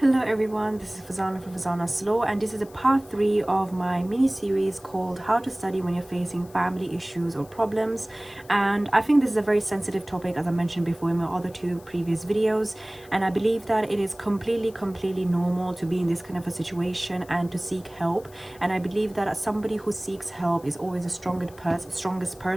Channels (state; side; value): noise; left; hiss, 24 dB below the sound